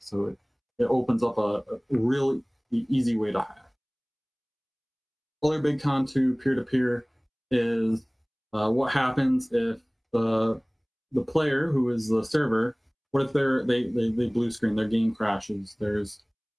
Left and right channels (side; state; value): both; identical; correlation 1.00